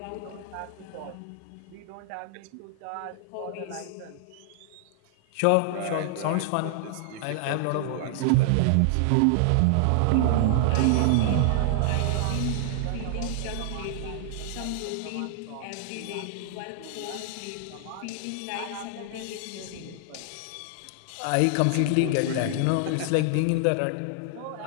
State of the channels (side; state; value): both; different; correlation -0.01